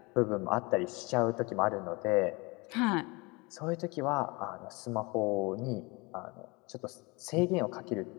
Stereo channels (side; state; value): right; quieter; 26.4 dB